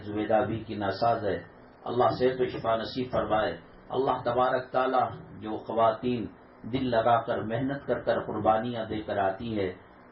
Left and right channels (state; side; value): identical; both; correlation 1.00